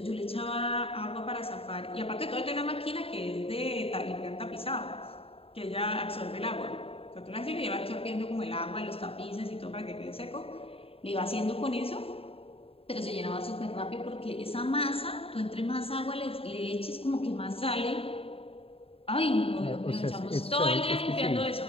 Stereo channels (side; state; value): right; late; 0.27 ms